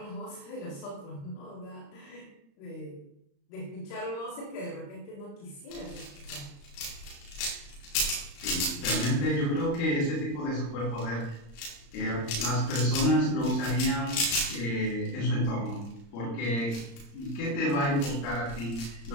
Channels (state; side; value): late; right; 35 ms